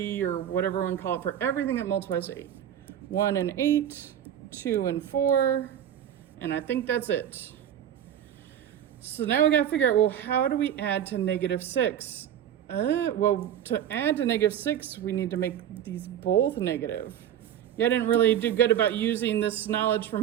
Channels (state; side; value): quieter; left; 10.2 dB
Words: or whatever we want to call it for everything that multiplies to 8. 1 and 8, 2 and 4, and I think that's it. So now we got to figure out, well, how do we add to negative 6? Well, to add to negative 6, we need to make these both negative. Yeah, I didn't really do good about using this knowledge from